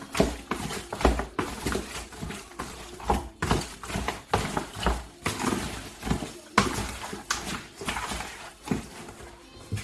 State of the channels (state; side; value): identical; both; correlation 1.00